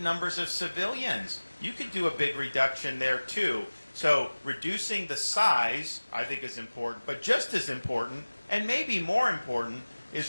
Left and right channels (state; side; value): inverted; both; correlation -1.00